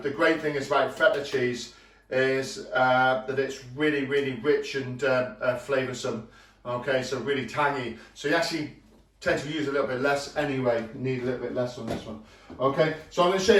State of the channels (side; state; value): both; identical; correlation 1.00